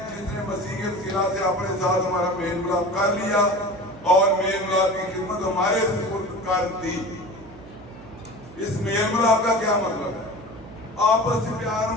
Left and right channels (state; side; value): noise; right; hum, 18 dB below the sound